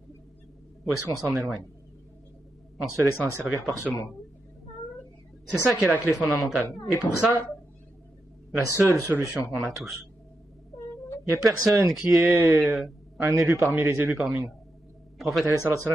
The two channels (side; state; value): both; normal; correlation 0.86